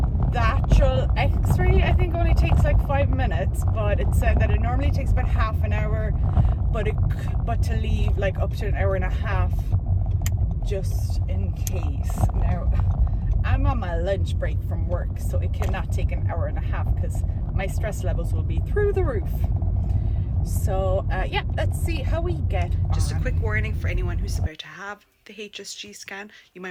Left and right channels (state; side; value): identical; both; correlation 1.00